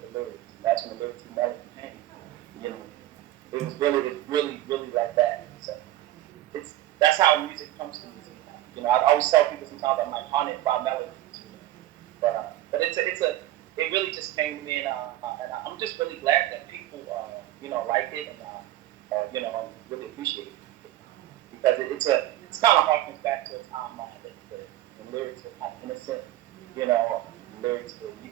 lyrics. That's when the lyrics and melody came. You know, it was really like that. So that's how music comes to me. You know, I always tell people sometimes I'm like haunted by melodies. You know? But it really just came to me, and I'm just really glad that people you know, like it and you know, really appreciate it, because it's kind of harkens back to a time when the lyrics were kind of innocent, you know, lyrics where you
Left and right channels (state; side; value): quieter; left; 14.7 dB